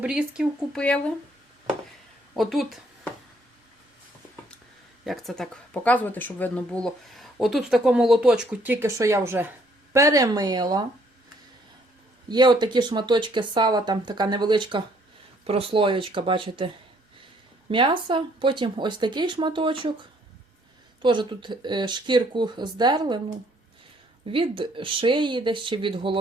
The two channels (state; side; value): normal; both; correlation 0.64